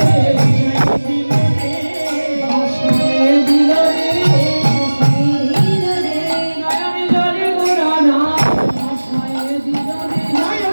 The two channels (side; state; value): both; inverted; correlation -1.00